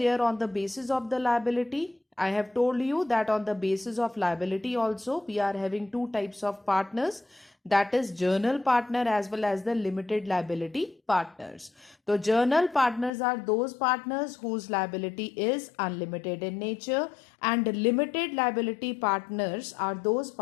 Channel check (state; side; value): drops out; right; at 13.1 s